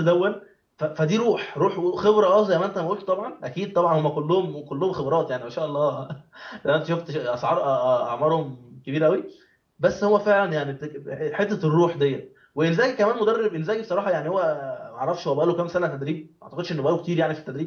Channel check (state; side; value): identical; both; correlation 1.00